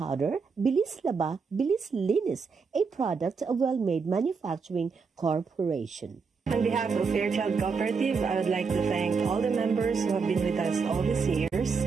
Bilis Laba, Bilis Linis, a product of Well-Made Manufacturing Corporation. On behalf of Fairchild Cooperative, I would like to thank all the members who have been with us all these years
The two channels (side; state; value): left; quieter; 5.2 dB